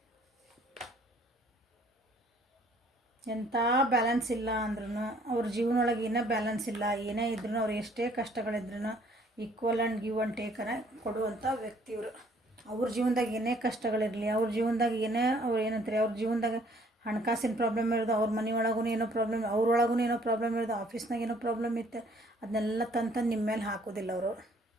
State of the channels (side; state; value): both; normal; correlation 0.60